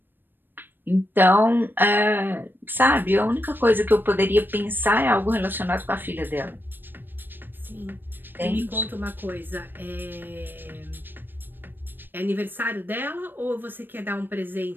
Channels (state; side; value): late; left; 0.095 ms